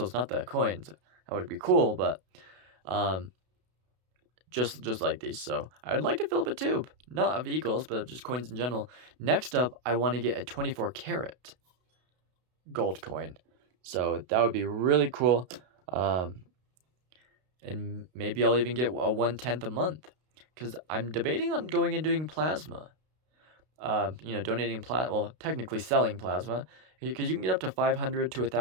not the coins. That would be cool, but just like these. So I would like to fill up a tube, not of Eagles, but of just coins in general. Next up, I want to get a 24 karat gold coin. So that would be really cool. And maybe I'll even get a 1/10 a month, because I'm debating on going and doing plasma. Donating technically selling plasma, because you can get up to $500 to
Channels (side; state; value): left; late; 32 ms